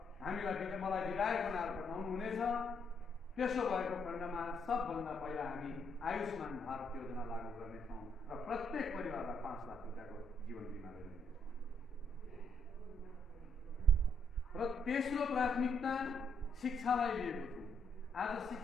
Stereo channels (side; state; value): both; normal; correlation 0.73